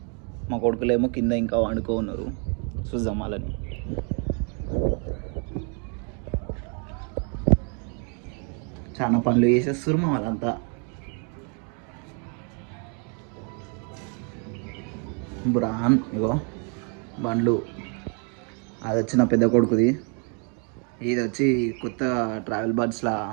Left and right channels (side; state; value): left; quieter; 37.3 dB